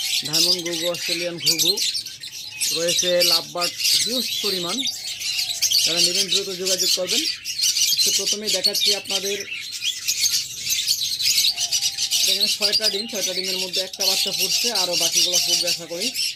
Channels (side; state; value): both; identical; correlation 1.00